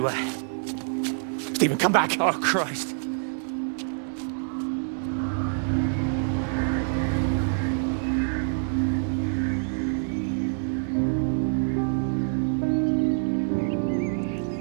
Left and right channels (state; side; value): silent; left; 61 dB below the other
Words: Stephen, come back! Oh, Christ.